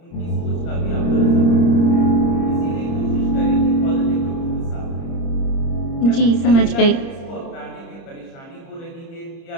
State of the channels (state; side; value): late; right; 30 ms